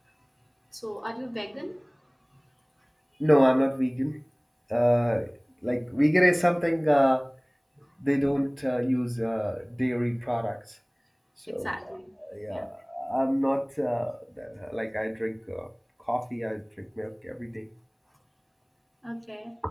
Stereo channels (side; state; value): both; identical; correlation 1.00